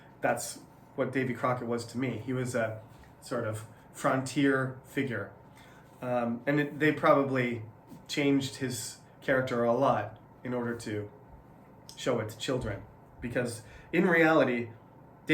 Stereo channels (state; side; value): identical; both; correlation 1.00